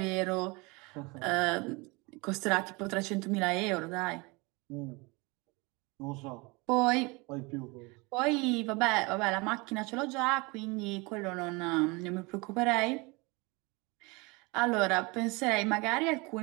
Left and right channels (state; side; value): quieter; left; 26.6 dB